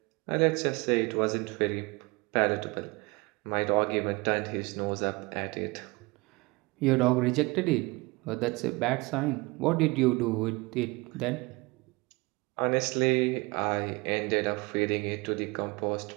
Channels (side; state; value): left; quieter; 25.0 dB